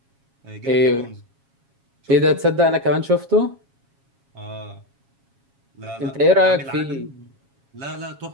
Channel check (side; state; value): left; late; 7.3 ms